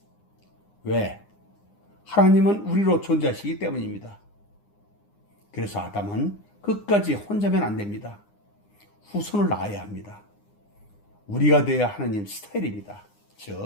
왜? 하나님은 우리로 존재하시기 때문입니다. 그래서 아담은 끝까지 혼자면 안 됩니다. 후손을 낳아야 합니다. 우리가 되어야 하나님 스타일입니다.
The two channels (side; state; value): right; late; 9.8 ms